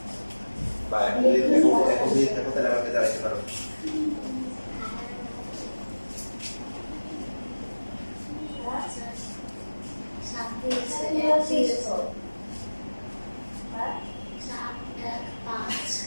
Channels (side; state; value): both; inverted; correlation -1.00